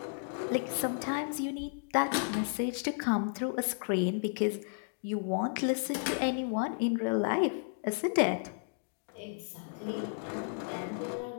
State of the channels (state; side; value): silent; right; digital silence